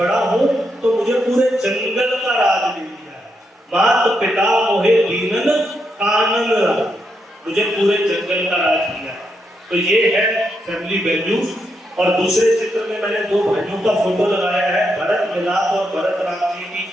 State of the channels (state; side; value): normal; both; correlation 0.81